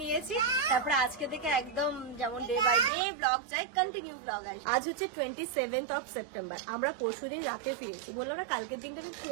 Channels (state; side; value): drops out; left; at 2.9 s